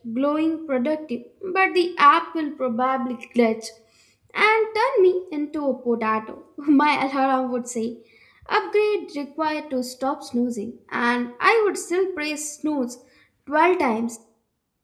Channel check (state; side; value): identical; both; correlation 1.00